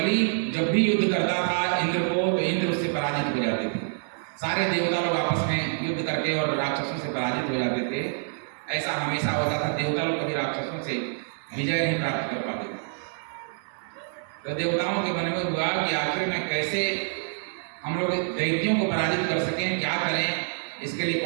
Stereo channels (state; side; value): silent; left; digital silence